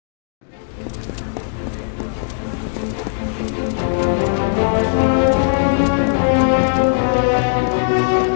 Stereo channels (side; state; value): right; silent; digital silence